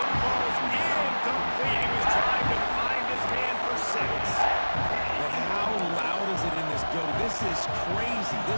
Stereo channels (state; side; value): inverted; both; correlation -1.00